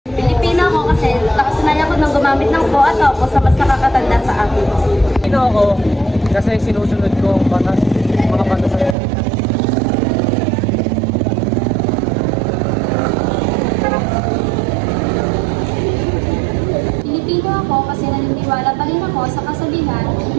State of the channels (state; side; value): drops out; left; at 9.0 s